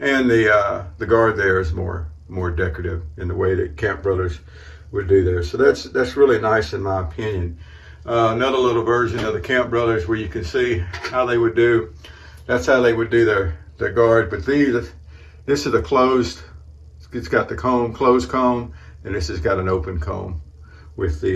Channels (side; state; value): both; identical; correlation 1.00